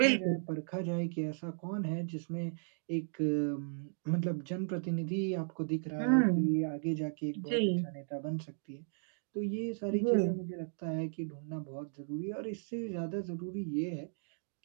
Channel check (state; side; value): silent; left; digital silence